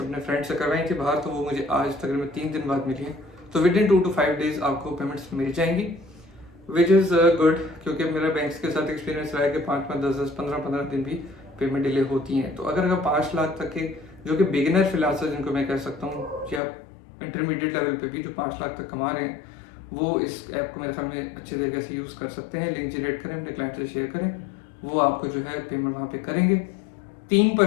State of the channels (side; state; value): right; drops out; at 16.6 s